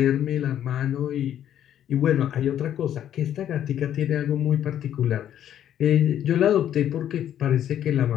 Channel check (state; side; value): quieter; right; 10.6 dB